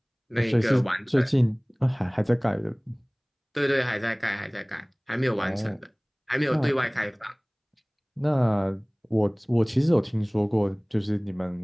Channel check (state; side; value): identical; both; correlation 1.00